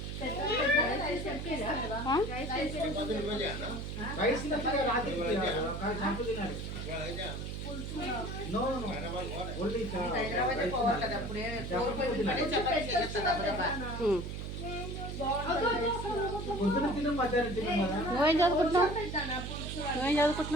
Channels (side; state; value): right; noise; hum, 6 dB below the sound